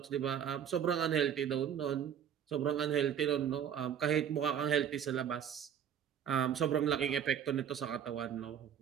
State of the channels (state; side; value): quieter; left; 8.9 dB